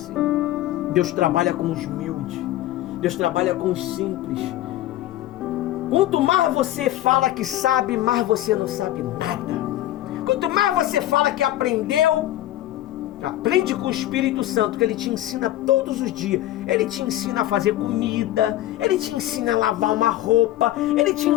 Deus trabalha com os humildes. Deus trabalha com os simples. Quanto mais você fala que sabe, mais você não sabe nada. Quanto mais você fala que aprendeu, aprende com o Espírito Santo, que Ele te ensina todos os dias. Ele te ensina a fazer comida, Ele te ensina a lavar uma roupa, Ele te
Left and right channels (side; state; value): right; quieter; 14.3 dB